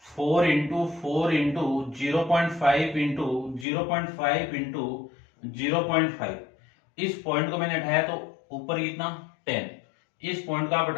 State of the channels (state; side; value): drops out; right; at 3.7 s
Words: 4 इंटू 4 इंटू 0.5 इंटू 0.5 इंटू 0.5, इस पॉइंट को मैंने उठाया तो ऊपर कितना 10, इस पॉइंट को आप